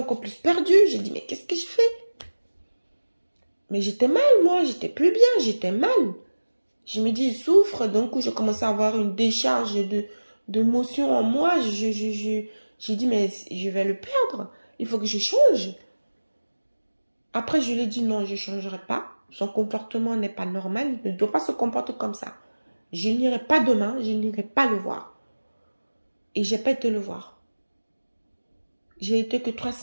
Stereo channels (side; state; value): both; inverted; correlation -1.00